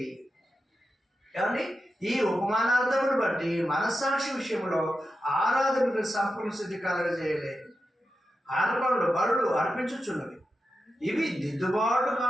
ఏమండి? ఈ ఉపమానార్థమును బట్టి మనస్సాక్షి విషయంలో ఆరాధనకు సంపూర్ణ సిద్ధి కలగజేయలేదు. అర్పణలు బలులు అర్పించుచున్నవి. ఇవి దిద్దుబాటు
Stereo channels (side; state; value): both; normal; correlation 0.90